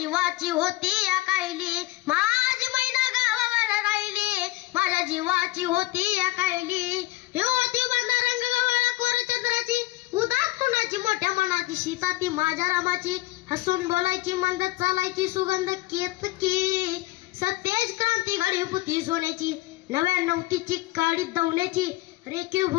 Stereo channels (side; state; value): right; quieter; 19.0 dB